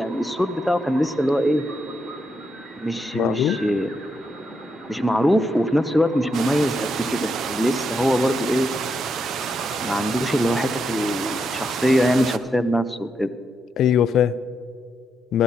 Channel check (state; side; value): normal; both; correlation 0.81